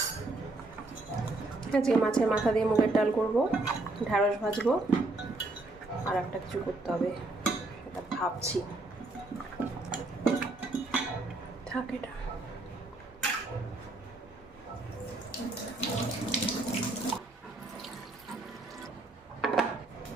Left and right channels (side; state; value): left; quieter; 3.0 dB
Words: আজকে মাছের মাথা দিয়ে মুগের ডাল করব, ঢ্যাঁড়স ভাজবো, আর একটা কিছু করতে হবে এটা ভাবছি। থাক এটা।